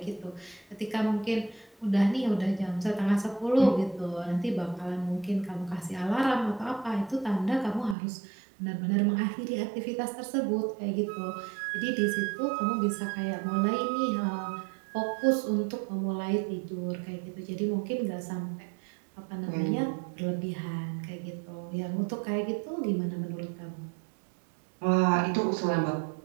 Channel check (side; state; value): left; drops out; at 8.0 s